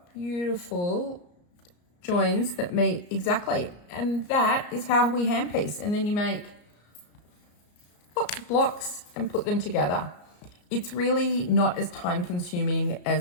beautiful joins that meet exactly. And that is how we hand piece. And then you make lots of blocks and put them together. It's really not as time consuming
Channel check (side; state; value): right; late; 34 ms